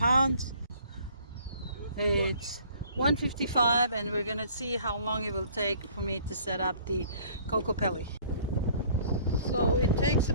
It's 155, and we're gonna see how long it will take for me to set up the kokopelli. So it takes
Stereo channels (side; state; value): both; inverted; correlation -0.55